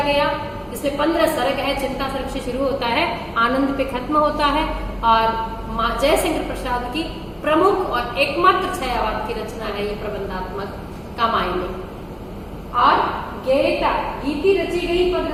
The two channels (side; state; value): both; identical; correlation 1.00